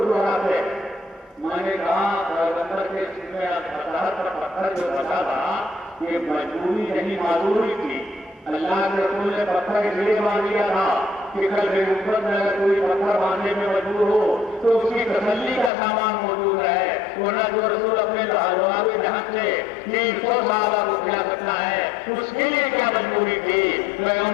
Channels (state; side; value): drops out; right; at 15.7 s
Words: دہراتے۔ میں نے کہا پیغمبر کے سینے پر پتھر جو بچا تھا یہ مجبوری نہیں معذوری تھی، اللہ کے رسول نے پتھر اس لیے باندھ دیا تھا کہ کل کے اوپر میں اگر کوئی پتھر باندھنے میں مجبور ہو تو اس کی تسلی کا سامان موجود ہے، ورنہ جو رسول اپنے لاجواب جہاں سے 300 صحابہ کو کیا کرتا ہے اس کے لیے کیا مجبوری تھی؟